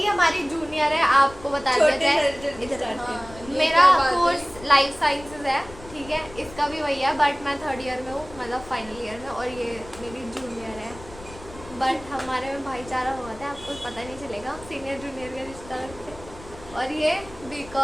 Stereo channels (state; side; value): noise; left; rumble, 18 dB below the sound